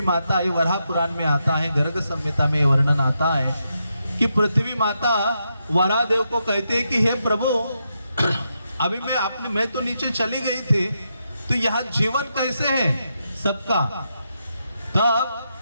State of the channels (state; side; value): inverted; both; correlation -0.83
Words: माता, ये वराह पुराण में आता है, गर्ग संहिता में वर्णन आता है कि पृथ्वी माता वराहदेव को कहते हैं कि हे प्रभु, अभी मैं तो नीचे चली गई थी, तो यहाँ जीवन कैसे है सबका? तब